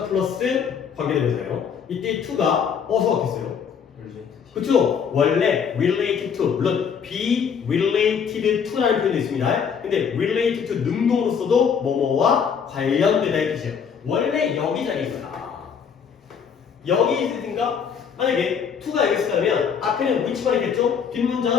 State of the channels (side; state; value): right; quieter; 7.0 dB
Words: 플러스 관계대명사예요. 이때 to가 어디서 왔겠어요? 그쵸? 원래 related to, 물론 be related to라는 표현도 있습니다. 근데 related to 능동으로서도 뭐뭐와 관련되다 이 뜻이에요. 원래 여기 자리에 있어요. 여기 있으니까 만약에 to가 여기 있으면 앞에는 which만 있겠죠?